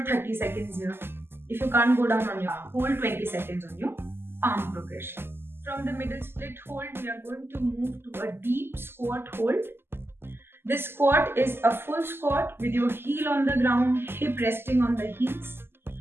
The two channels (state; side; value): late; left; 0.11 ms